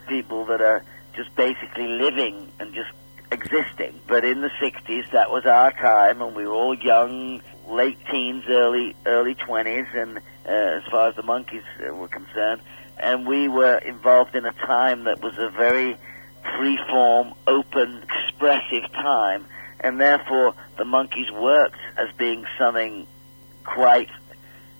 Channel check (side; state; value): both; inverted; correlation -1.00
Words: people that are just basically living and just existing. But in the 60s, that was our time, and we were all young, late teens, early 20s, and as far as the Monkees were concerned. And we were involved in a time that was a very free-form, open, expressive time, and therefore the Monkees worked as being something quite